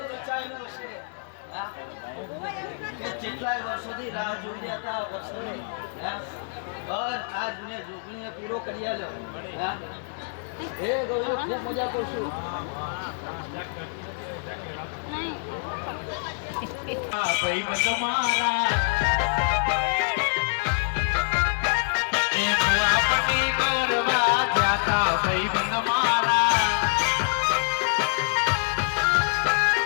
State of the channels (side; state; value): right; silent; digital silence